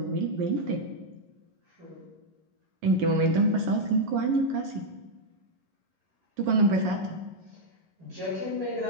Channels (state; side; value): late; left; 11 ms